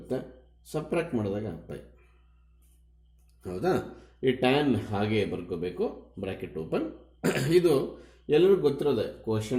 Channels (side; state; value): both; identical; correlation 1.00